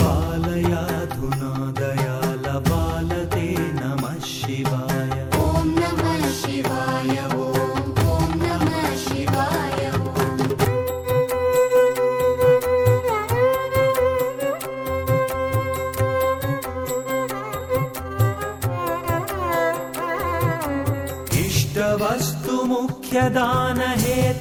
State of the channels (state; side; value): identical; both; correlation 1.00